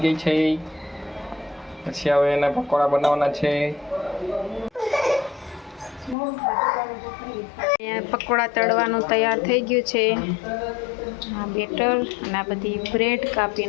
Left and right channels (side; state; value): right; drops out; at 6.2 s